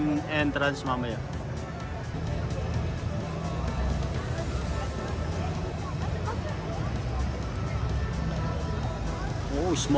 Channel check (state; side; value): identical; both; correlation 1.00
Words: entrance mamaya. Oh,